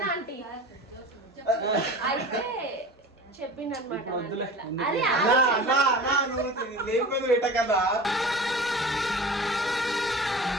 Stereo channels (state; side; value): normal; both; correlation 0.36